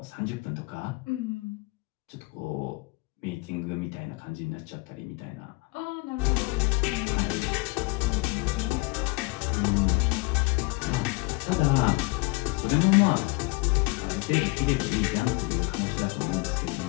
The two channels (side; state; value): right; quieter; 25.4 dB